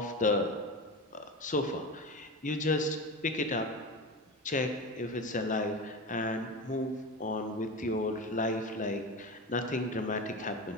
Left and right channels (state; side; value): normal; both; correlation 0.25